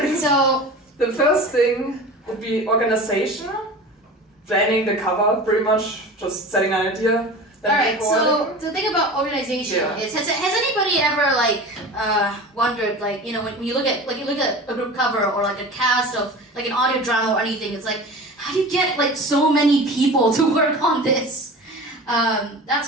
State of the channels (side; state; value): both; normal; correlation 0.35